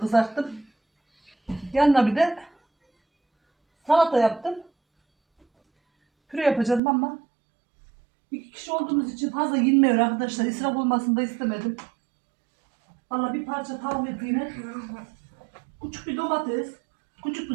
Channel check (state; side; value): drops out; left; at 6.8 s